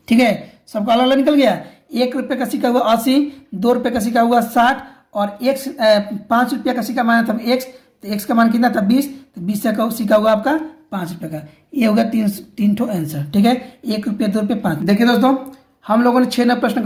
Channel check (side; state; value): both; identical; correlation 1.00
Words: ठीक है, सबका अलग अलग निकल गया। 1 रुपये का सिक्का हुआ 80, 2 रुपये का सिक्का हुआ 60 और 5 रुपये का सिक्का माना था x। तो x का मान कितना था 20, तो 20 का सिक्का हुआ आपका 5 रुपये का। ये होगा तीन ठो आंसर। ठीक है, 1 रुपये 2 रुपये 5। देखिए दोस्तों, हम लोगों ने 6 नए